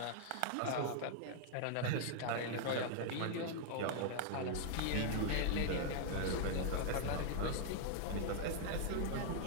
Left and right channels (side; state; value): both; different; correlation -0.01